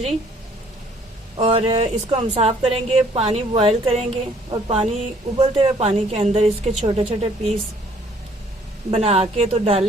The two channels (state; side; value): normal; both; correlation 0.60